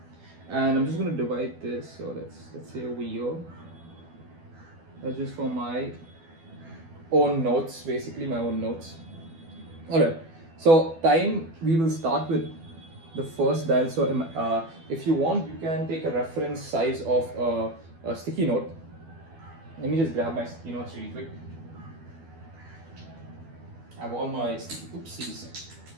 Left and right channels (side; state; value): left; late; 12 ms